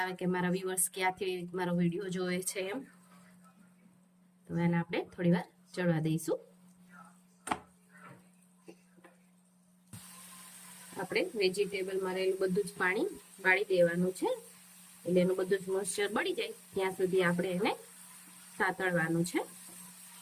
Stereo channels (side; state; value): both; identical; correlation 1.00